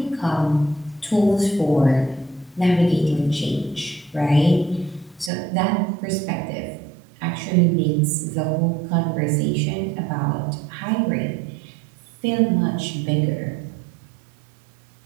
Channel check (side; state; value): left; drops out; at 5.3 s